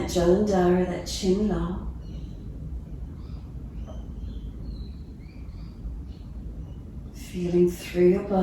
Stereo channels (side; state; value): both; identical; correlation 1.00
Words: Jalandhara, that chin long. Feeling through your